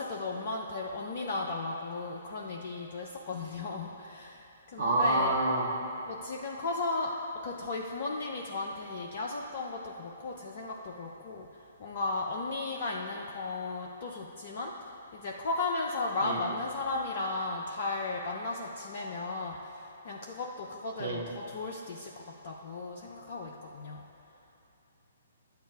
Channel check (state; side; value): inverted; both; correlation -0.53